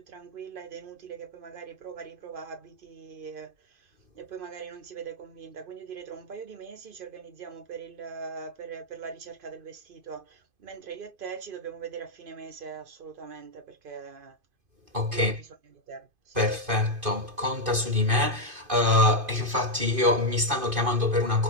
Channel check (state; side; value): late; left; 2.5 ms